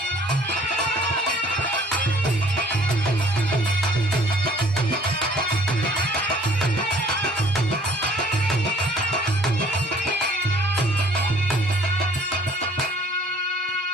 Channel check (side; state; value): both; normal; correlation 0.56